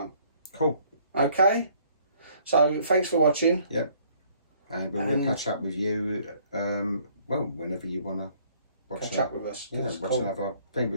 Cool. Okay. So thanks for watching. Yep. And we'll catch up with you. Whenever you wanna catch up with us. Yeah, watch another thing.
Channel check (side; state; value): both; inverted; correlation -0.61